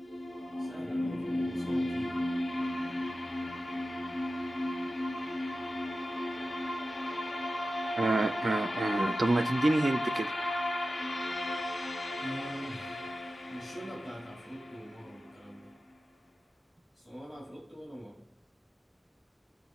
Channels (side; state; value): both; normal; correlation 0.94